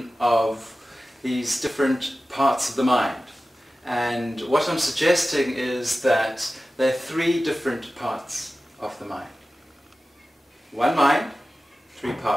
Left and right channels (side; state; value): both; normal; correlation 0.95